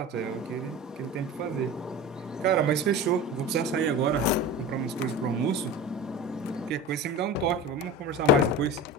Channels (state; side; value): normal; both; correlation 0.31